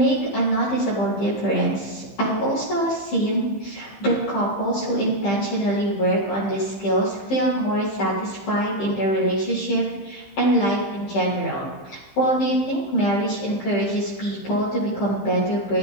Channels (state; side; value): late; right; 15 ms